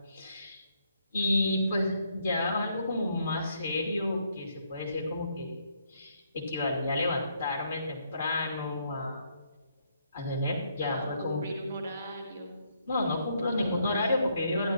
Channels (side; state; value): both; inverted; correlation -0.73